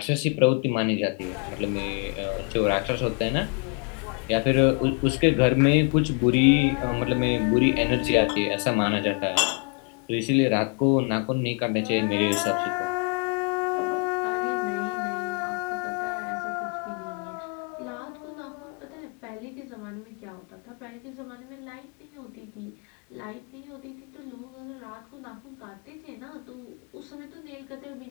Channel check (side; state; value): right; quieter; 37.2 dB